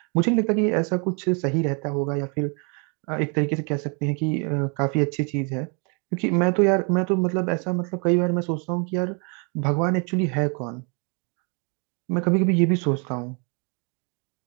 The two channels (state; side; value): quieter; left; 35.7 dB